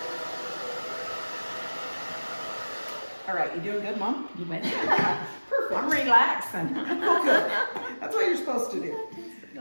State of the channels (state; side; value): inverted; both; correlation -1.00